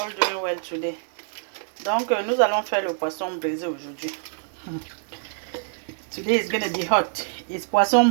doing well today. Donc nous allons faire le poisson braisé aujourd'hui. Today is gonna be hot. It's poisson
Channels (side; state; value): left; silent; digital silence